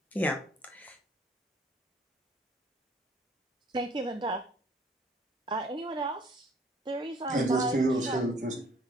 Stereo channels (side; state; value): both; normal; correlation 0.59